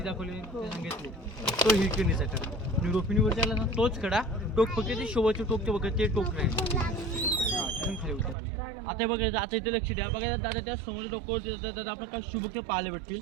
दाखवली सांगितली तो हिरकणीचा कडा. आणि रोपिणीवरती आला ना तोच कडा. टोक फक्त ते शोभाचे टोक ते बघा ते टोक राहील. खाली उतर. आता बघायचं आता इथे लक्ष द्या. बघा दादा त्या समोर टोकावर दादा आपण काही शुभक पाहायला भेटतील.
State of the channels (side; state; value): left; drops out; at 8.3 s